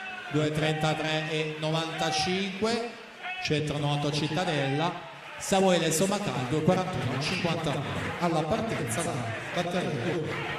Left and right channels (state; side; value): identical; both; correlation 1.00